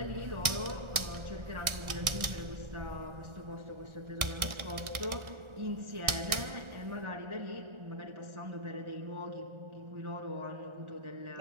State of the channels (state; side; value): late; left; 1.4 ms